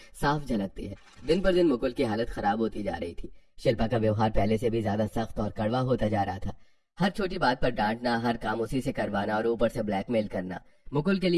साफ झलकती है। दिन पर दिन मुकुल की हालत खराब होती जा रही थी। शिल्पा का व्यवहार पहले से भी ज्यादा सख्त और कड़वा होता जा रहा था। हर छोटी बात पर डांटना, हर काम उसी से करवाना और ऊपर से ब्लैकमेल करना। मुकुल के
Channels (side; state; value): both; identical; correlation 1.00